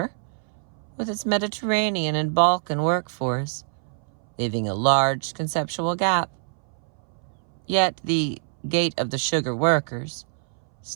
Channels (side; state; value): left; silent; 61 dB below the other